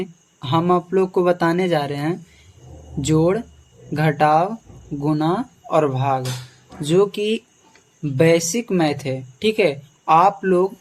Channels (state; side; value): identical; both; correlation 1.00